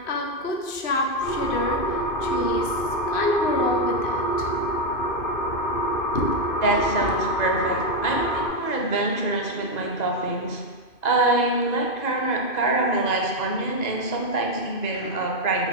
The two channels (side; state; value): right; late; 2.5 ms